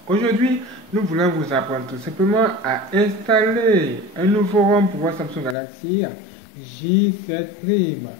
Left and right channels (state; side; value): drops out; right; at 5.6 s